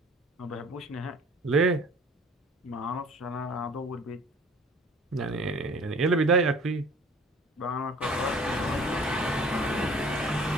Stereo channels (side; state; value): both; normal; correlation 0.48